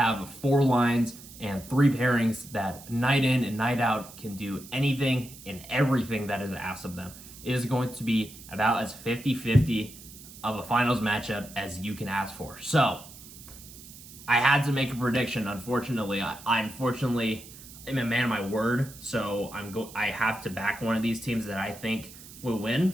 4 lines and 3 pairings that night in and night out can do anything and everything that is asked of them. It is going to be about as 50-50 of a finals matchup as you can ask for. So, I had to make a prediction. Unfortunately, I unfortunately am a man of my word, so I have to back one of these teams that I think will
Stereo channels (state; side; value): noise; right; hiss, 17 dB below the sound